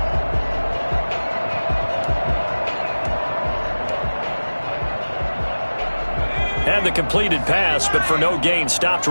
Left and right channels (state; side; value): inverted; both; correlation -1.00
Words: And the completed pass, but for no gain, stopped